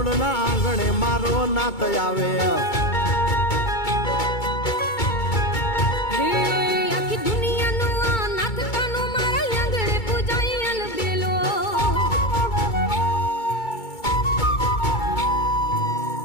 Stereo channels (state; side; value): late; right; 2.2 ms